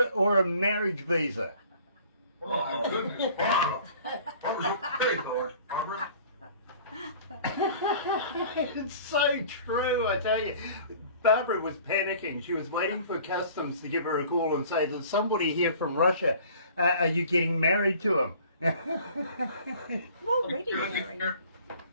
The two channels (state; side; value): inverted; both; correlation -0.49